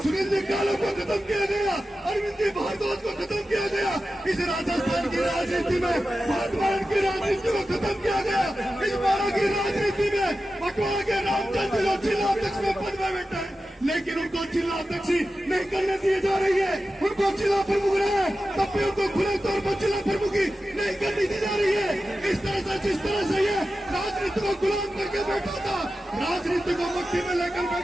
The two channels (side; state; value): both; normal; correlation 0.93